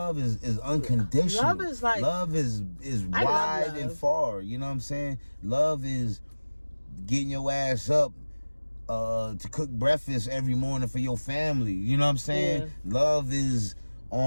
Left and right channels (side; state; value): both; inverted; correlation -1.00